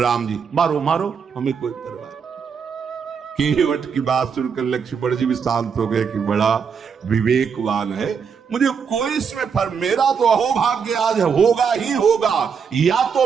जी। मारो मारो, हमें कोई परवाह। केवट की बात सुनकर लक्ष्मण जी भी शांत हो गए कि बड़ा विवेकवान है, मुझे कोई इसमें फर्क, मेरा तो अहोभाग्य आज होगा ही होगा, या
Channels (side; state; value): left; quieter; 6.4 dB